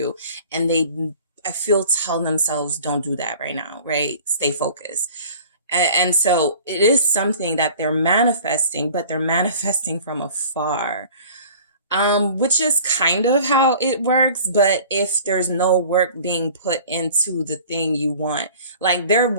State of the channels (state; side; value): inverted; both; correlation -0.46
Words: And I feel tell themselves, don't do that right now, right? Stay focused. And so it is something that they're manifesting, but they're manifesting from afar. Which is kind of how it works. But if there's no work being put into the thing you want, like their